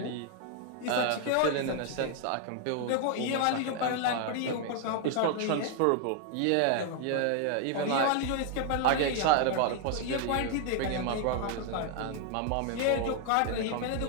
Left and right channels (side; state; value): both; different; correlation 0.00